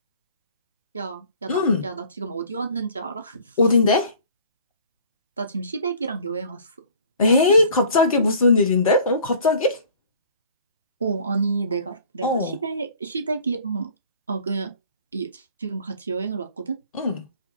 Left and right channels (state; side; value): inverted; both; correlation -0.50